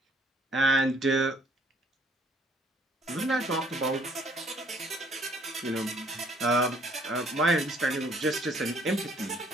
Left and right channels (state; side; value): normal; both; correlation 0.61